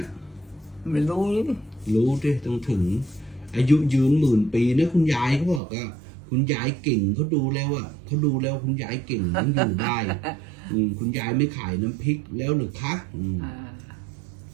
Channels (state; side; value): drops out; left; at 5.6 s